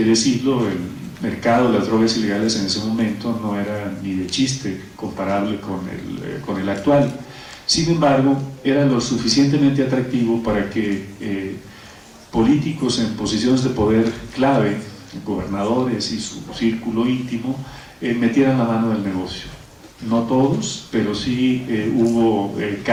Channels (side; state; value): both; identical; correlation 1.00